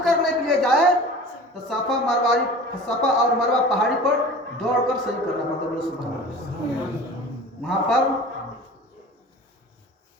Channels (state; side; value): normal; both; correlation 0.39